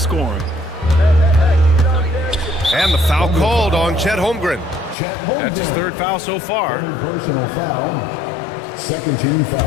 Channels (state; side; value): drops out; right; at 5.0 s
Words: And the foul called on Chet Holmgren. That's his 3rd foul so far. Personal foul. Second team